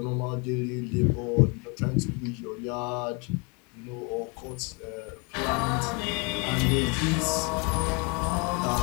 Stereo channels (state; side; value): quieter; right; 32.0 dB